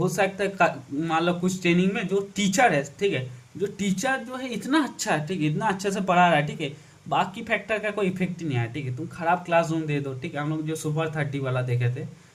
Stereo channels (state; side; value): identical; both; correlation 1.00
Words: सकता है मान लो कुछ ट्रेनिंग में जो टीचर है, ठीक है, जो टीचर जो है इतना अच्छा है, ठीक है, इतना अच्छे से पढ़ा रहा है, ठीक है, बाकी फैक्टर का कोई इफेक्ट ही नहीं आया, ठीक है। तुम खराब क्लासरूम दे दो, ठीक है, हम लोग जो सुपर 30 वाला देखे थे